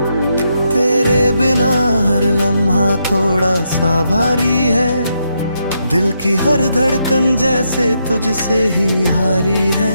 बिना हर लम्हा थोड़ा सा भारी है, दिल की हर धड़कन जैसे तुझसे ही हारी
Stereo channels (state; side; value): inverted; both; correlation -0.80